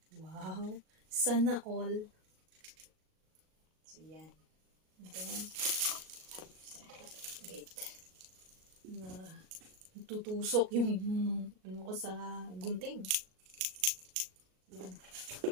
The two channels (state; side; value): late; left; 38 ms